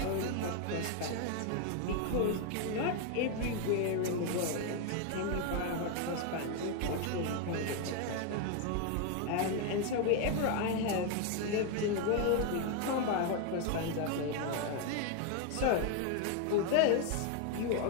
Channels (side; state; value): both; different; correlation 0.01